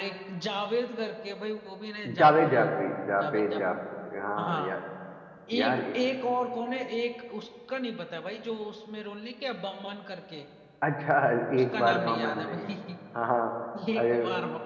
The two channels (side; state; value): both; identical; correlation 1.00